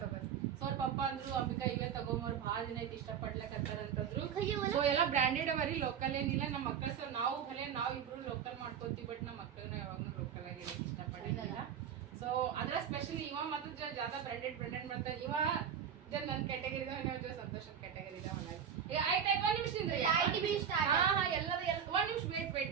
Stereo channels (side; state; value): left; quieter; 8.2 dB